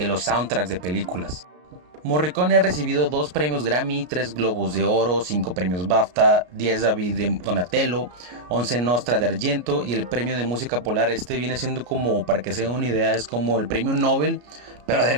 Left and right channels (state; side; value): late; left; 33 ms